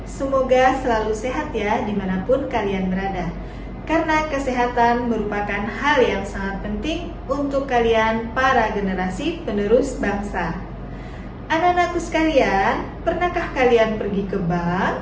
Semoga selalu sehat ya dimanapun kalian berada. Karena kesehatan merupakan hal yang sangat penting untuk kalian para generasi penerus bangsa. Anak-anakku sekalian, pernahkah kalian pergi ke bank?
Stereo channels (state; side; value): identical; both; correlation 1.00